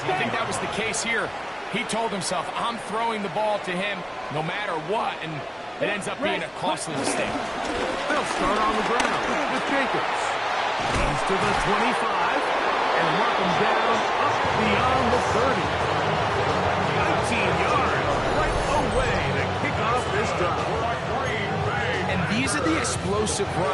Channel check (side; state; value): both; identical; correlation 1.00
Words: think that was the case here. He told himself, I'm throwing the ball to him no matter what, and it ends up being a costly mistake. They'll start on the ground with Jacobs. He's to the 25, and mark him down up beyond the 30. 19 yards right away to kick off this drive. And these are the explosive